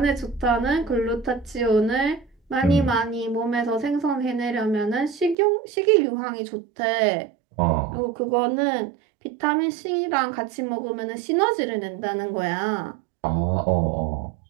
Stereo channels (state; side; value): drops out; left; at 5.4 s